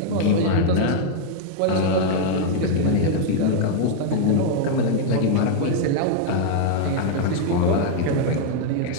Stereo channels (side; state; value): both; different; correlation -0.01